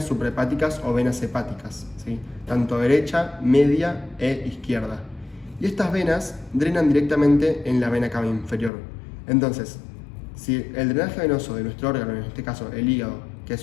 suprahepáticas o venas hepáticas, ¿sí? Tanto derecha, media e izquierda. Y estas venas drenan directamente en la vena cava inferior. Entonces, si el drenaje venoso de nuestro órgano, en este caso el hígado, que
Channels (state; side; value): drops out; right; at 8.7 s